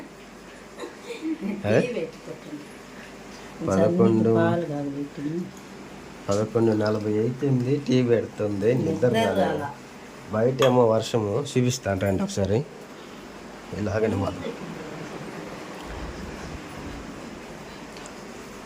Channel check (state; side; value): identical; both; correlation 1.00